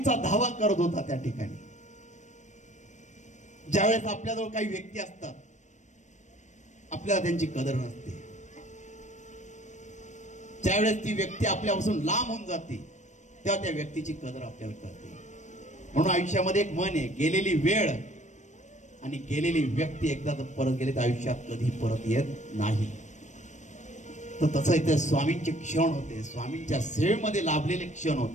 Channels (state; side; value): late; right; 0.35 ms